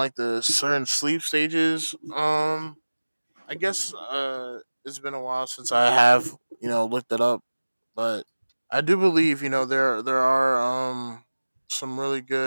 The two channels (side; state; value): both; inverted; correlation -1.00